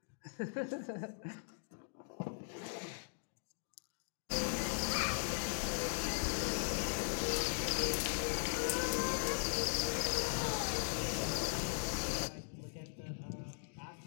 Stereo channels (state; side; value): silent; right; digital silence